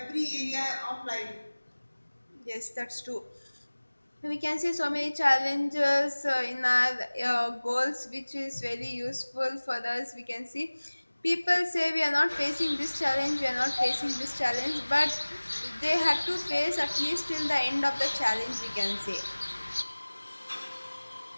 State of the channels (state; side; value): inverted; both; correlation -1.00